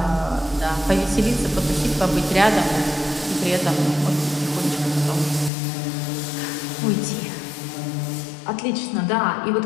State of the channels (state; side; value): drops out; right; at 5.5 s